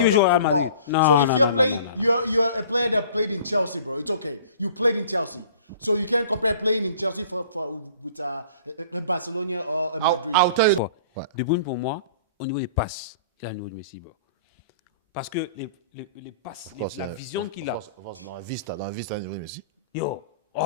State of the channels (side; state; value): both; inverted; correlation -0.48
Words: joue au Real football. Madrid. Non, So if non, you're non, playing, non. you're a player that played in Chelsea, bro. It's okay. You played in Chelsea, so you can't compare playing in Chelsea with Barcelona or Madrid. I'll tell you... Ouais. De Bruyne, pour moi, au niveau des passes, il a le niveau de Messi. Bro. Parce que les passes, la vision qu'il a. Dans la Vista, Messi. Yo,